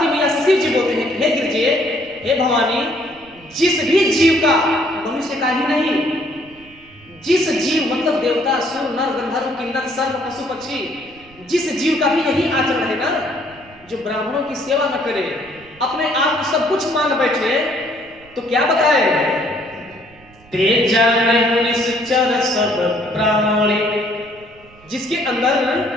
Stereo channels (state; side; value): noise; right; rumble, 26 dB below the sound